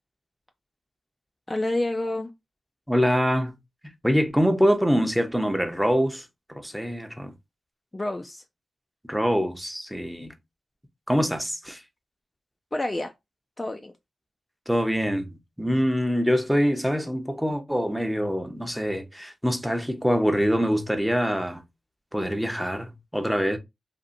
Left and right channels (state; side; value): normal; both; correlation 0.97